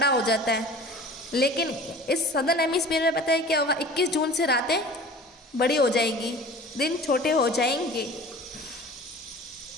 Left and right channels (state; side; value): normal; both; correlation 0.42